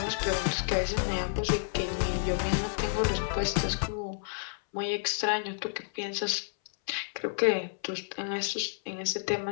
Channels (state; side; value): silent; right; 58 dB below the other